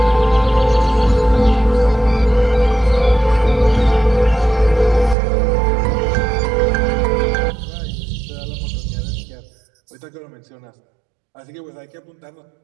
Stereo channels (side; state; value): left; drops out; at 5.2 s